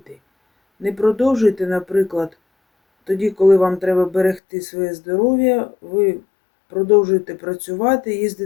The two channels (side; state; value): right; drops out; at 4.4 s